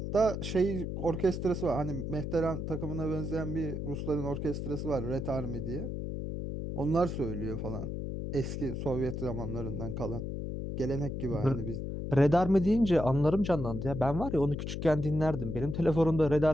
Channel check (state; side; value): noise; left; hum, 4 dB below the sound